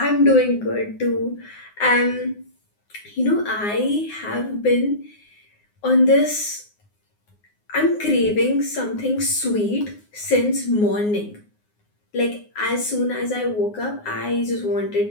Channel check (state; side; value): late; right; 9.6 ms